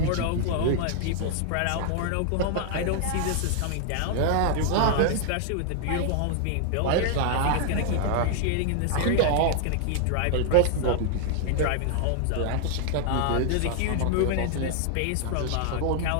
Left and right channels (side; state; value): both; different; correlation 0.00